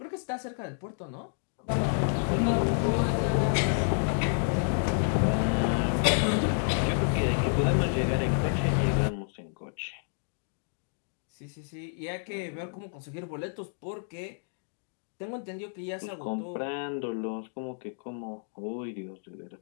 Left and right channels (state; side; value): silent; right; digital silence